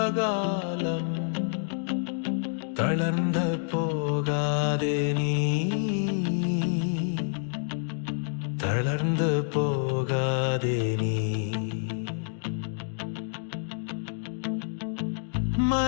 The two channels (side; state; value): right; silent; digital silence